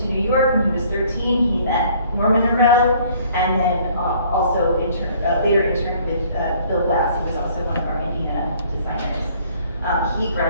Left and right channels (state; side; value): inverted; both; correlation -0.58